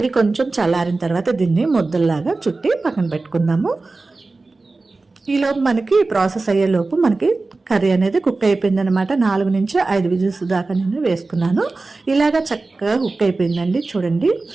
కొంచెం చల్లారిన తర్వాత దీన్ని ముద్దల్లాగా చుట్టి పక్కన పెట్టుకుందాము. ఈలోపు మనకి ప్రాసెస్ అయ్యేలోపు మనకి కర్రీ అనేది కుక్ అయిపోయింది అనమాట. 4 నుంచి 5 విజిల్స్ దాకా నేను వేసుకున్నాను. ఇలాగా చక్కగా కుక్ అయిపోయిందండి. చూడండి,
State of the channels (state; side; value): quieter; left; 3.5 dB